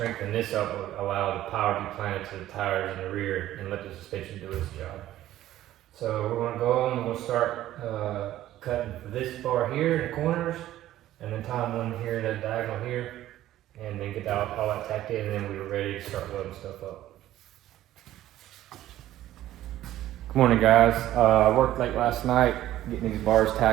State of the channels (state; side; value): quieter; left; 13.7 dB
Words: this up will allow the power to be planted to the tires in the rear and let the suspension do its job. So we're going to go on, we're going to start cutting this bar here in the corners, and then tie one here, the diagonal here, and then get all that tacked in, and then we were ready to start loading stuff up. Good morning, guys. I worked late last night getting these bars